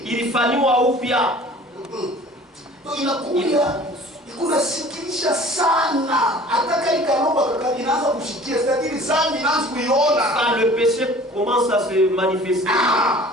ilifanywa upya. Donc inakuja kunasikilisha sana, hata kali karoba inaanza kushikia, c'est-à-dire zambi inaanza kuiona. Quand le péché commence à se manifester,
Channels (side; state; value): both; normal; correlation 0.47